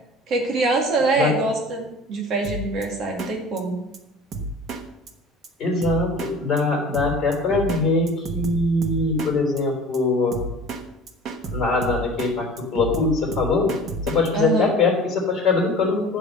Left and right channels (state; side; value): normal; both; correlation 0.42